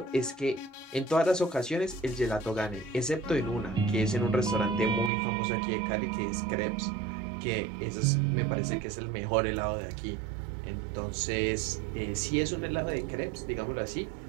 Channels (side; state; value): left; drops out; at 5.1 s